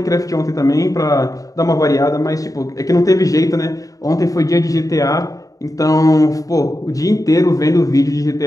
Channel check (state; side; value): late; right; 0.17 ms